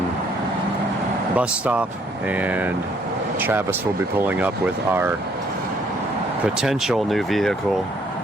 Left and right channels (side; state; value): both; normal; correlation 0.66